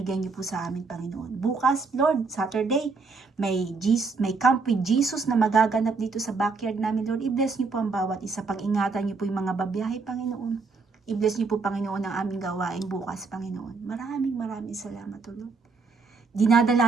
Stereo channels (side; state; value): left; quieter; 4.4 dB